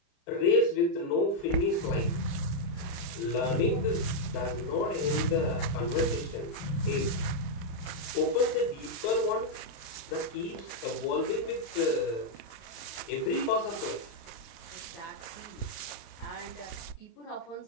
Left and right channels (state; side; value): late; right; 35 ms